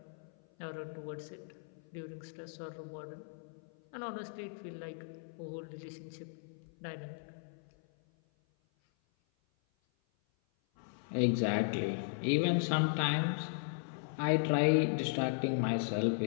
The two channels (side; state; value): right; silent; 53 dB below the other